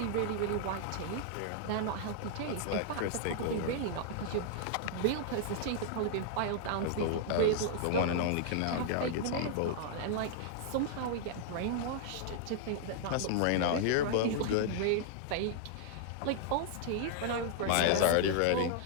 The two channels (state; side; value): different; both; correlation -0.01